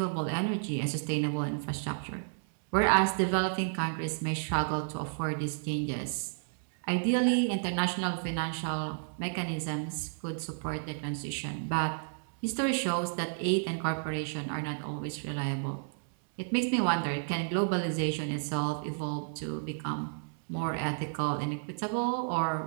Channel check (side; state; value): left; silent; 57 dB below the other